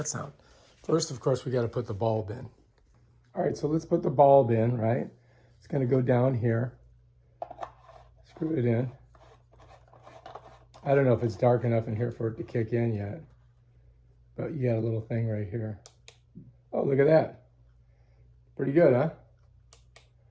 sound? First, of course, we got to put the bulb in. All right, so let's put the bulb in, right? It's going to go down here. Screw it in. I don't know if it's dark enough in here for it to kick in yet, but you got a little thing right here. Oh, look at that. Pretty good, huh?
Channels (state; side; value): identical; both; correlation 1.00